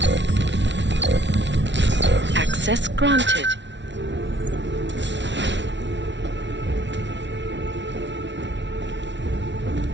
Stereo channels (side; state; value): left; late; 0.52 ms